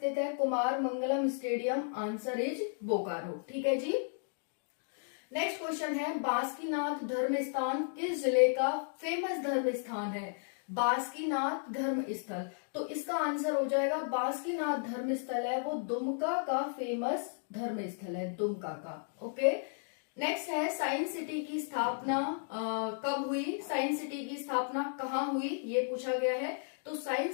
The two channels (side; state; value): right; silent; digital silence